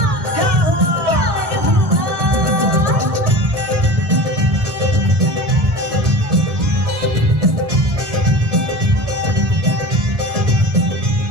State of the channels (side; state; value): left; late; 1.2 ms